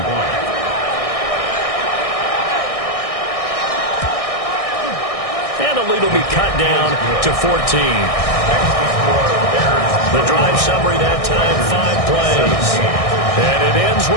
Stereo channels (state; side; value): late; right; 1.6 ms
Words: And the lead will be cut down to 14. The drive summary that time, 5 plays. And it ends